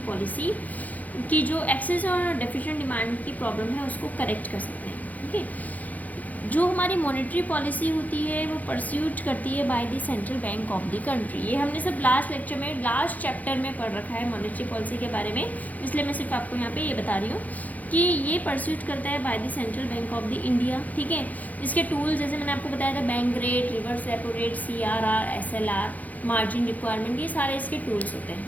पॉलिसी की जो एक्सेस और डेफिशिएंट डिमांड की प्रॉब्लम है उसको करेक्ट कर सकते हैं. ओके, जो हमारी मॉनेटरी पॉलिसी होती है वो परस्यूट करती है by the central bank of the country. ये हमने सब लास्ट लेक्चर में लास्ट चैप्टर में पढ़ रखा है मॉनेटरी पॉलिसी के बारे में, इसलिए मैं सिर्फ आपको यहाँ पे ये बता रही हूँ कि ये परस्यूट करता है by the central bank of the India. ठीक है, इसके टूल्स जैसे मैंने आपको बताया था, bank rate, reverse repo rate, CRR, SLR, margin requirement, ये सारे इसके टूल्स होते हैं.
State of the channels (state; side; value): late; right; 0.078 ms